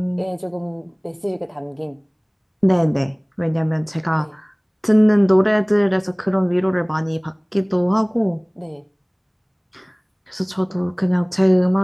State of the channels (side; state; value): both; identical; correlation 1.00